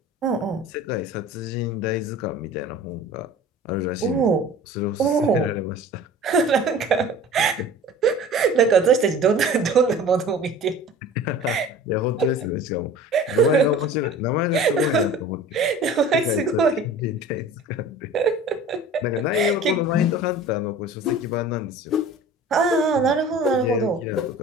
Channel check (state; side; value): normal; both; correlation 0.42